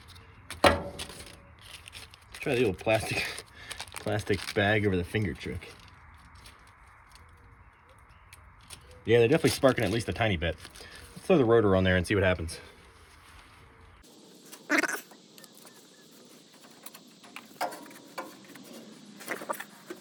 Let's try the old plastic bag over the finger trick. Yeah, they're definitely sparking at least a tiny bit. Let's throw the rotor on there and see what happens.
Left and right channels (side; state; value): both; identical; correlation 1.00